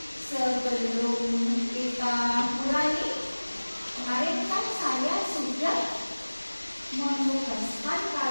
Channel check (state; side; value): inverted; both; correlation -1.00